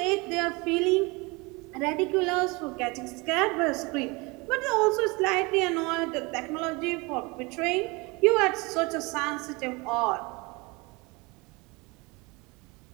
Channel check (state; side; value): quieter; left; 26.3 dB